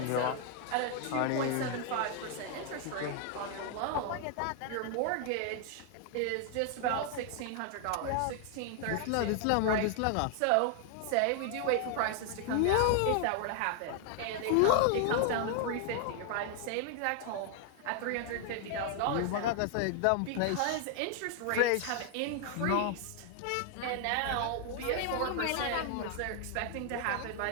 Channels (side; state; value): both; different; correlation 0.00